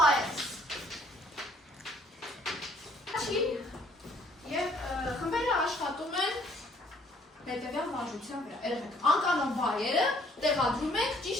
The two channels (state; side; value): normal; both; correlation 0.62